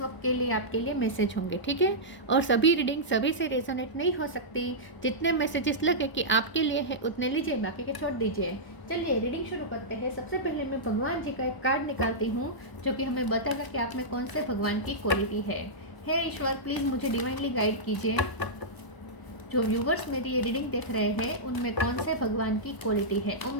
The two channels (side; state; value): right; late; 1.0 ms